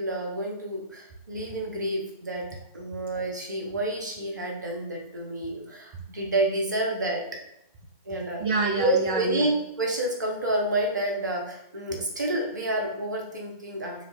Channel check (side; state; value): both; inverted; correlation -0.32